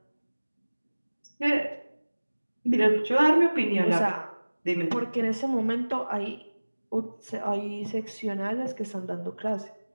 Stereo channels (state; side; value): inverted; both; correlation -1.00